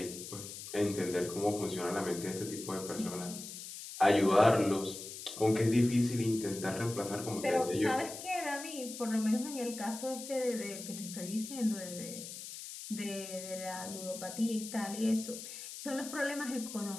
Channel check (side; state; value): left; noise; hiss, 10 dB below the sound